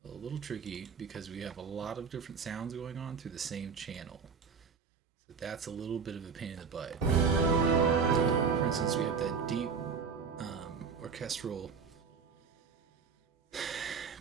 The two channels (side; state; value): left; quieter; 5.8 dB